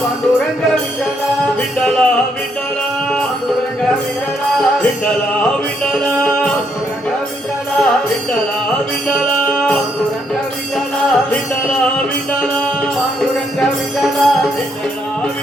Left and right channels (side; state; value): both; normal; correlation 0.74